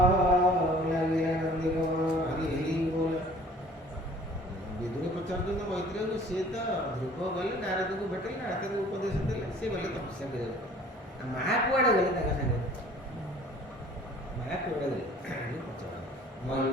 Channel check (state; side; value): normal; both; correlation 0.51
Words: ଲାଗିଲା। ନନ୍ଦିକ ହରି ହରି ବୋଲ। ବିଦୁର ପଚାରୁଛନ୍ତି ମୈତ୍ରେୟକୁ, ସିଏ ତ ଧ୍ରୁବ ଗଲେ ନାରଦକୁ ଭେଟିଲେ, ନାରଦକୁ ଉପଦେଶ ଦେଲେ, ସେ ଗଲେ ତପସ୍ୟା କରିବାକୁ। ମା କୁଆଡ଼େ ଗଲେ ତାଙ୍କ ସାଙ୍ଗରେ, ମା କୁଆଡ଼େ ଗଲେ ପଚାର।